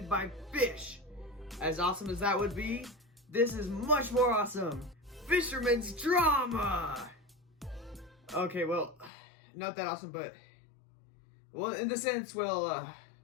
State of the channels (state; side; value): drops out; right; at 9.1 s